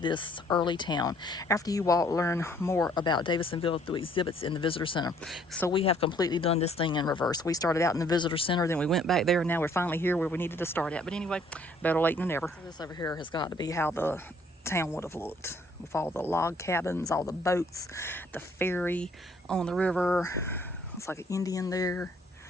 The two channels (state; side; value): normal; both; correlation 0.62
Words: early town. After you walk, learn more about Davidsonville through exhibits in the visitor center. So we have completely done this thing in reverse. We started out in the visitor center, then we went back there, and now we're finally here where we needed to start at. But anyway, better late than never. So this over here has got to be how the town would have looked, with all the log cabins, all the boats, the ferry on the river. It's like an Indian there.